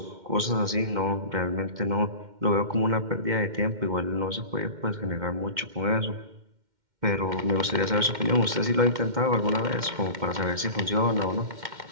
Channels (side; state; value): left; late; 2.1 ms